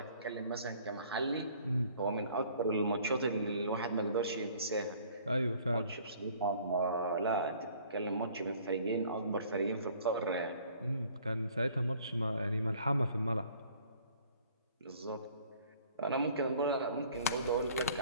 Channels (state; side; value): inverted; both; correlation -0.55